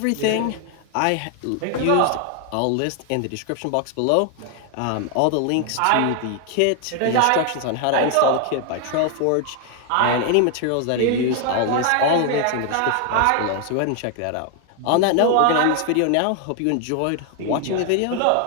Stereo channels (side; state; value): both; different; correlation 0.00